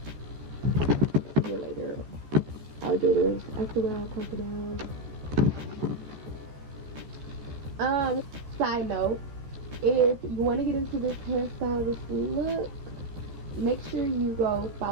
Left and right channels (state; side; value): late; left; 14 ms